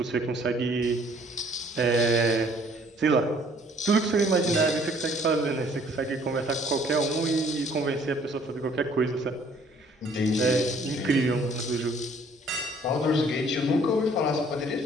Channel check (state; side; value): normal; both; correlation 0.59